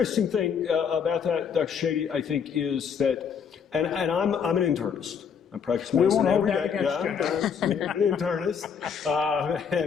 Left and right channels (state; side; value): quieter; right; 7.0 dB